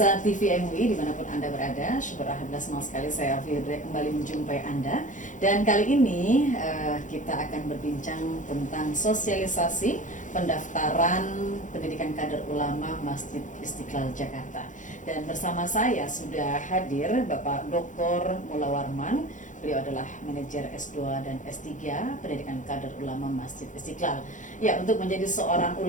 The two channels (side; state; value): right; late; 0.37 ms